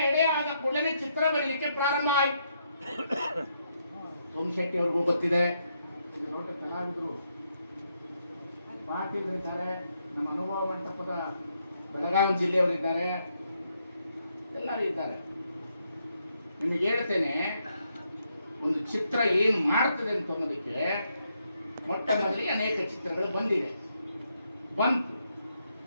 ಎಡೆ ಆದ ಕೂಡಲೇ ಚಿತ್ರ ಬರೀಲಿಕ್ಕೆ ಪ್ರಾರಂಭ ಆಯಿತು. ಸೋಮಶೆಟ್ಟಿ ಅವ್ರಿಗೂ ಗೊತ್ತಿದೆ, ದೊಡ್ಡ ಕಲಾವಿದರು, ಪಾಟೀಲರಿದ್ದಾರೆ, ನಮ್ಮ ಅನುಭವ ಮಂಟಪದ ಬೆಳಗಾವಿ ಜಿಲ್ಲೆಯವರಿದ್ದಾರೆ, ಎಲ್ಲರೂ ಇದ್ದಾರೆ. ನಿಮಗೆ ಹೇಳ್ತೇನೆ, ಒಂದು ಚಿತ್ರ ಏನು ಮಾಡ್ತದೆ ಅಂತ ಅನ್ನೋದಕ್ಕೆ ಮೊಟ್ಟ ಮೊದಲಿಗೆ ಅನೇಕ ಚಿತ್ರಗಳು ಬಂತು.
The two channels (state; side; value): inverted; both; correlation -0.78